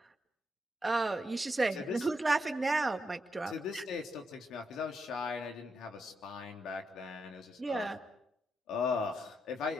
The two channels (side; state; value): both; normal; correlation 0.82